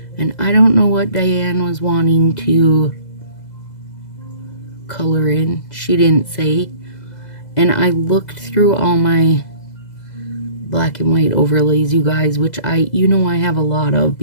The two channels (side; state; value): right; late; 2.0 ms